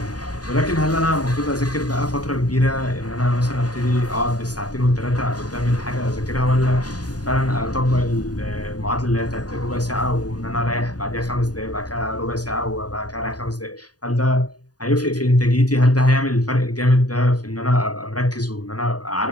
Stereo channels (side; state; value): right; late; 0.68 ms